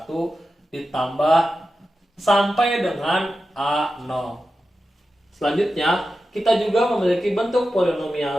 ditambah sampai dengan a0. Selanjutnya kita juga memiliki bentuk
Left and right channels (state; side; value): normal; both; correlation 0.92